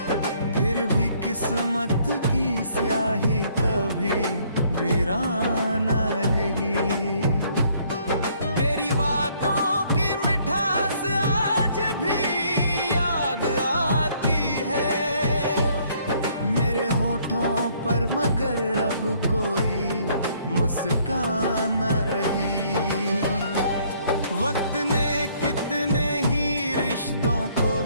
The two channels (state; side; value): inverted; both; correlation -0.64